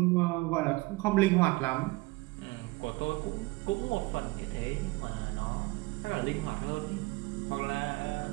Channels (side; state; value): left; quieter; 23.1 dB